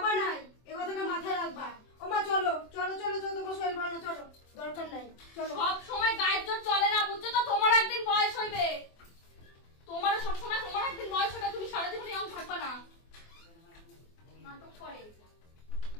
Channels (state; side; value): late; right; 24 ms